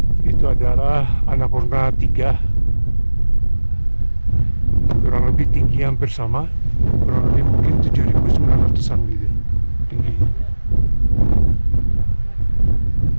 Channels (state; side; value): inverted; both; correlation -1.00